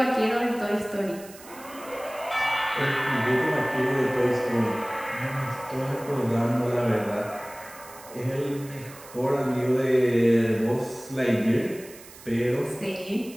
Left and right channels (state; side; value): noise; right; hiss, 19 dB below the sound